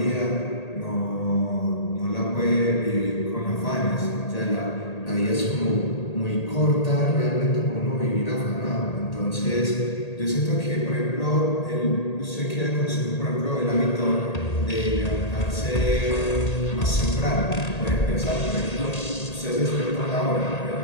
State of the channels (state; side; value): late; right; 1.8 ms